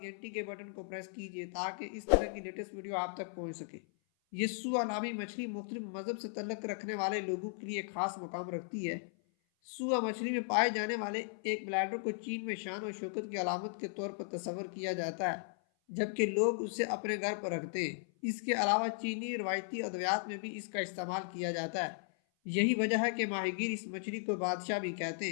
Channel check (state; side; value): silent; right; 53 dB below the other